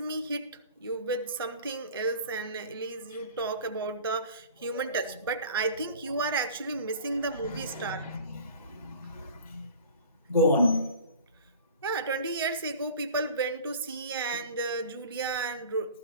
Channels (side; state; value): both; inverted; correlation -0.42